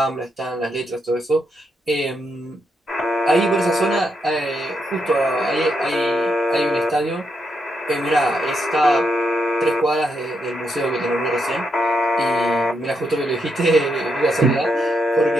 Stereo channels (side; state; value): both; normal; correlation 0.81